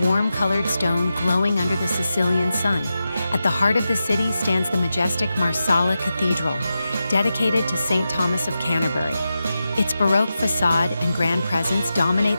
warm-colored stone glowing under the Sicilian sun. At the heart of the city stands the majestic Marsala Cathedral, dedicated to St. Thomas of Canterbury. Its Baroque facade and grand presence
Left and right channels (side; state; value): both; inverted; correlation -0.91